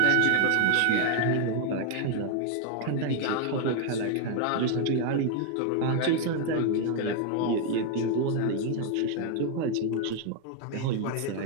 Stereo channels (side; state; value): both; different; correlation 0.00